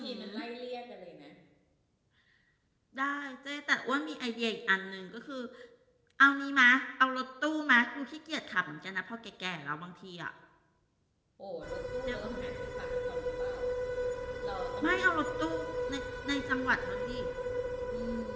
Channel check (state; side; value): identical; both; correlation 1.00